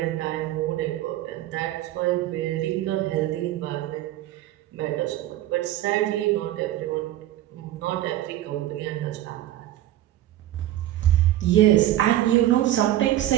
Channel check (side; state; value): left; quieter; 13.8 dB